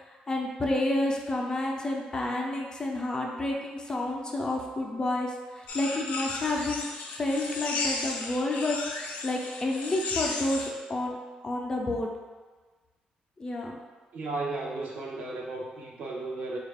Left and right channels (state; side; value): normal; both; correlation 0.74